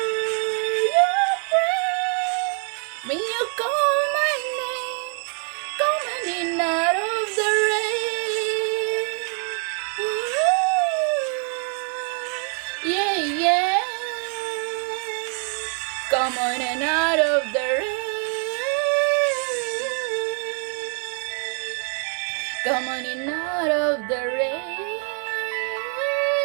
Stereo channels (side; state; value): left; quieter; 39.5 dB